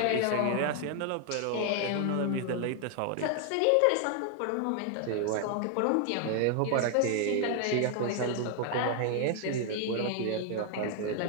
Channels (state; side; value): different; both; correlation 0.00